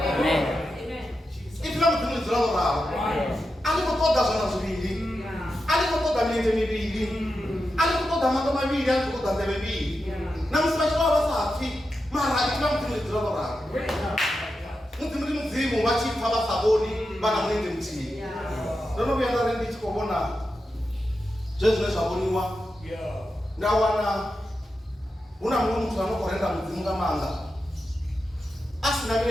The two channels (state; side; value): normal; both; correlation 0.89